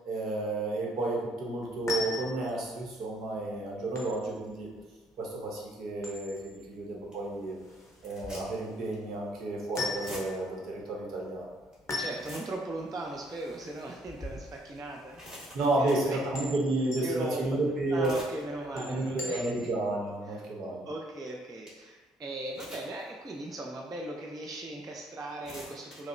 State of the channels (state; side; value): normal; both; correlation 0.66